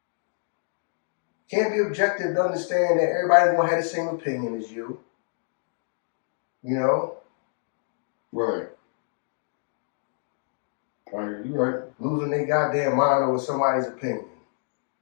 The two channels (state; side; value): silent; right; digital silence